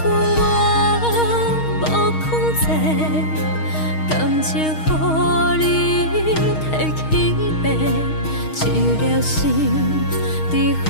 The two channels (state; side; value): late; right; 6.4 ms